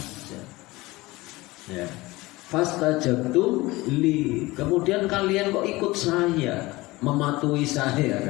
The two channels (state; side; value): quieter; right; 20.8 dB